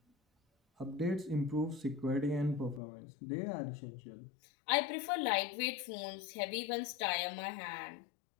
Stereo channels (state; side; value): drops out; right; at 2.8 s